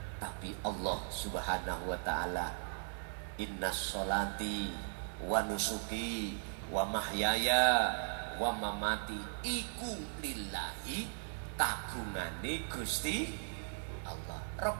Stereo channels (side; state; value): left; silent; 53 dB below the other